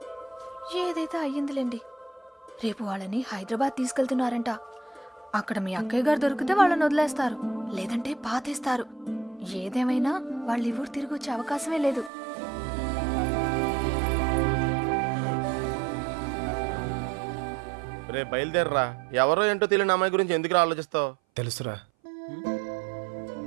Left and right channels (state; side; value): drops out; left; at 12.1 s